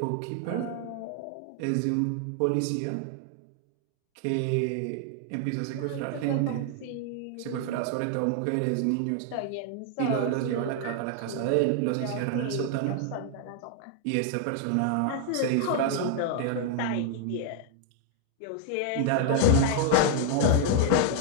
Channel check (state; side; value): different; both; correlation 0.00